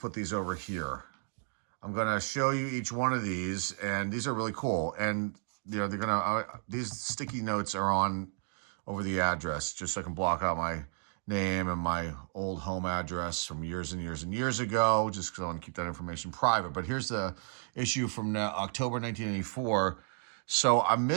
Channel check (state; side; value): silent; left; digital silence